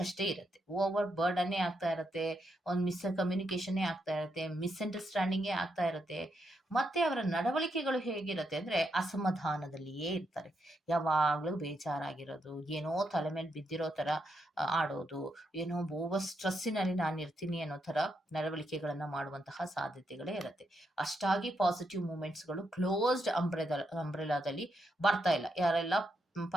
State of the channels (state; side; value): normal; both; correlation 0.81